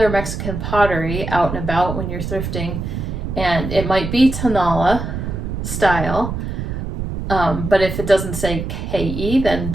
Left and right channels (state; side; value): noise; right; rumble, 5 dB below the sound